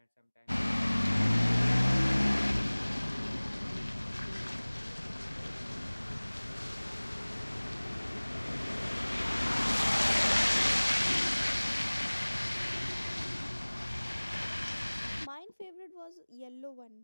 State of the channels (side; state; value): both; inverted; correlation -1.00